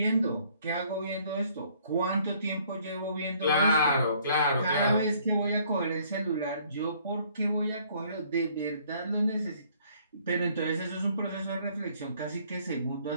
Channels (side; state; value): both; inverted; correlation -0.62